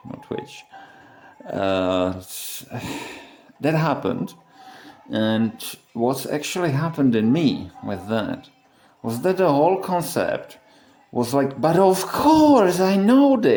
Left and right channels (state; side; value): identical; both; correlation 1.00